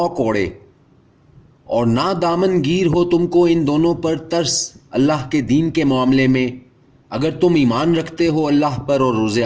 کوڑے، اور نہ دامن گیر ہو تم کو ان دونوں پر ترس اللہ کے دین کے معاملے میں، اگر تم ایمان رکھتے ہو اللہ پر اور روز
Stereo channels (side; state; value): both; identical; correlation 1.00